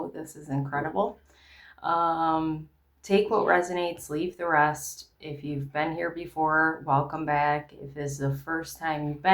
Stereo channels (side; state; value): both; identical; correlation 1.00